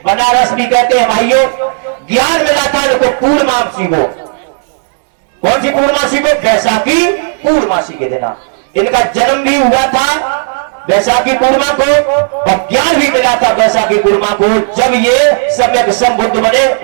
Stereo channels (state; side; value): silent; left; digital silence